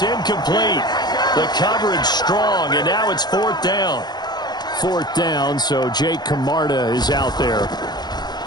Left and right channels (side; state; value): right; late; 0.20 ms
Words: incomplete. The coverage strong, and now it's 4th down. 4th down, so Jake Camarda is out there.